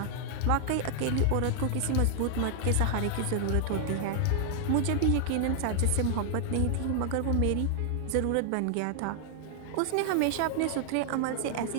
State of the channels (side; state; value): both; different; correlation 0.00